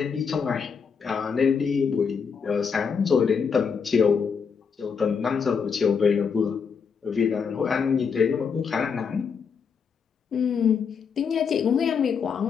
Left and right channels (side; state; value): right; quieter; 6.2 dB